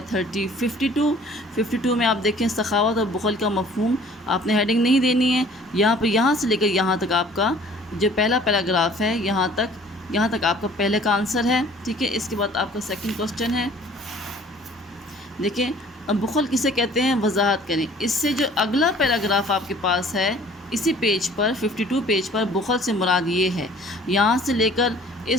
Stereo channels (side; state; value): both; normal; correlation 0.52